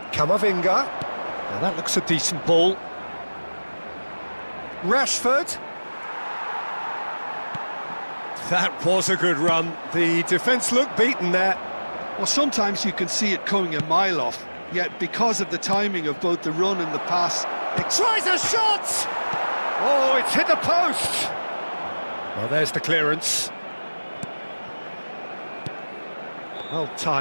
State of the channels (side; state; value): both; inverted; correlation -1.00